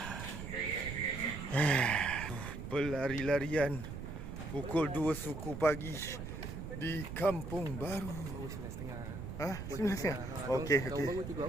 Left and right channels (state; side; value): noise; right; rumble, 7 dB below the sound